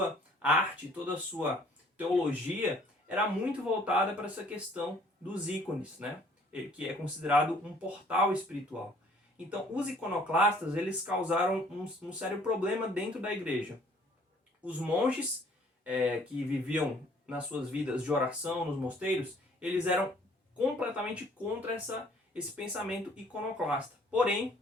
arte, toda a sua teologia era muito voltada para essa questão dos ícones, né? Que é considerado um portal espiritual. Então, os iconoclastas eles causaram um sério problema dentro da igreja. Os monges que viviam nas suas vidas de oração nos mosteiros, eles eram completamente contra esse pensamento iconoclasta. Porém,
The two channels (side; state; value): both; normal; correlation 0.58